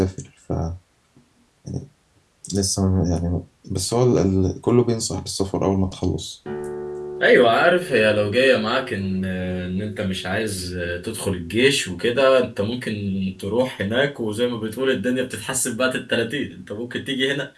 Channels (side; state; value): both; identical; correlation 1.00